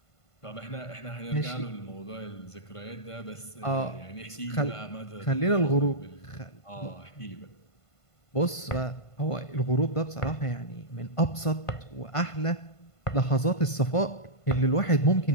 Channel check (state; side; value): late; right; 1.5 ms